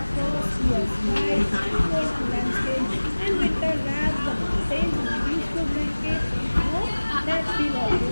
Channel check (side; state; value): both; inverted; correlation -1.00